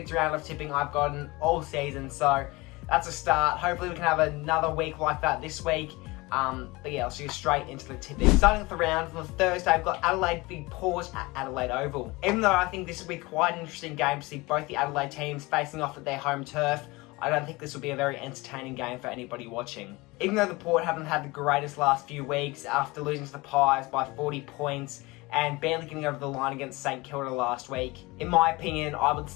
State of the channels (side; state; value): right; quieter; 23.0 dB